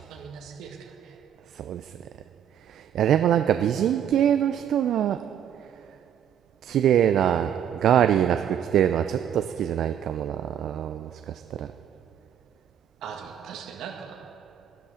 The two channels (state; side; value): quieter; left; 9.6 dB